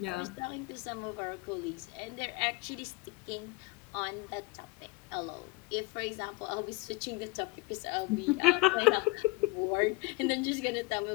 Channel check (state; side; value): quieter; right; 22.4 dB